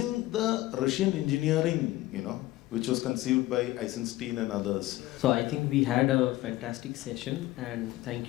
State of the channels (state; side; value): quieter; right; 17.2 dB